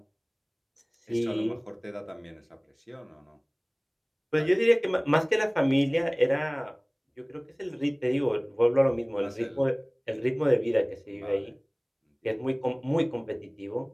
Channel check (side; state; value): both; identical; correlation 1.00